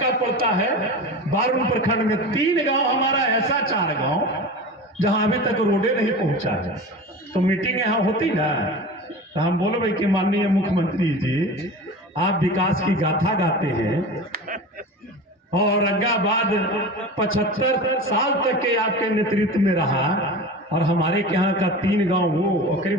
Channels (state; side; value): normal; both; correlation 0.32